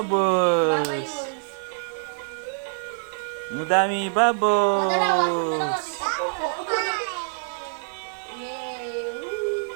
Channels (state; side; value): silent; left; 62 dB below the other